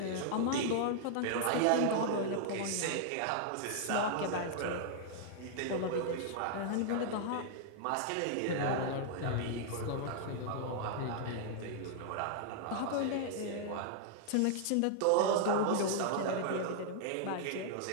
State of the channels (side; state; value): both; different; correlation -0.01